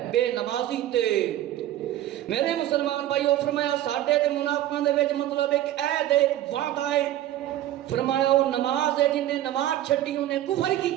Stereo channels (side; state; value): left; quieter; 13.3 dB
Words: بے نمازی تے۔ میرے مسلمان بھائیو فرمایا ساڈے تے منافقاں دے وچ مطلب ایک عہد ہے، ایک وعدہ ہے۔ فرمایا وہ نماز ہے جن نے نماز چھڈی انہیں کفر